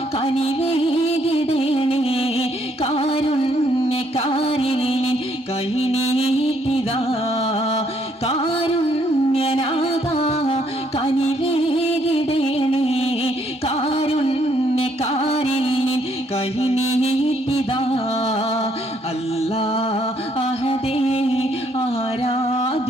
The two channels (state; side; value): normal; both; correlation 0.69